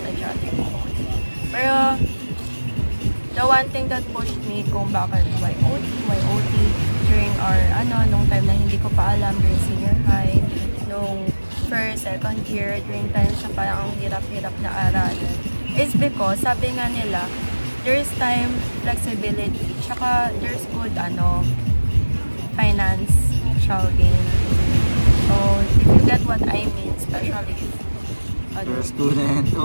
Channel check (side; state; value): both; inverted; correlation -1.00